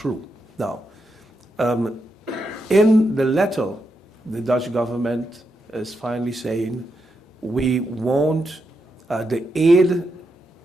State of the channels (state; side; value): normal; both; correlation 0.83